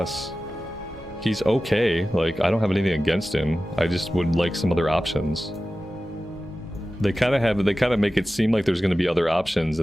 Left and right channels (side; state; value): both; normal; correlation 0.95